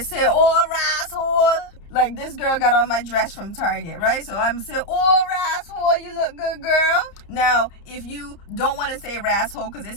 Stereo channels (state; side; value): late; right; 30 ms